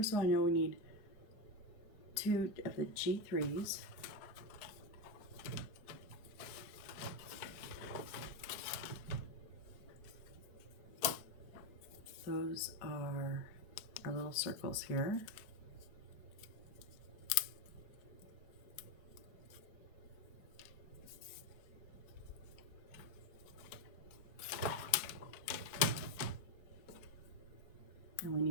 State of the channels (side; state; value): right; late; 4.7 ms